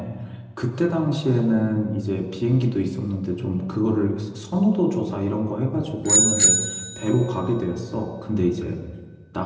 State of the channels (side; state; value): both; identical; correlation 1.00